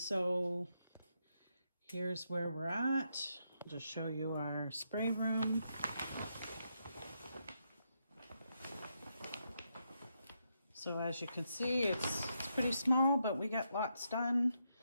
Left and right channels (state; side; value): inverted; both; correlation -0.81